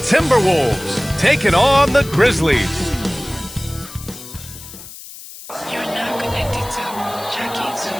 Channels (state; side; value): noise; left; hiss, 15 dB below the sound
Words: Timberwolves taking on the Grizzlies.